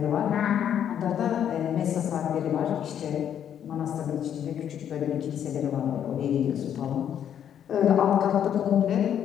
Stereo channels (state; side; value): quieter; right; 9.4 dB